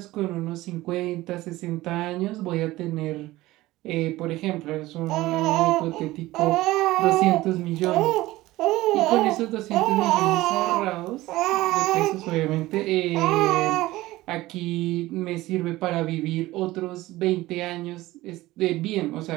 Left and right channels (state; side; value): quieter; left; 17.8 dB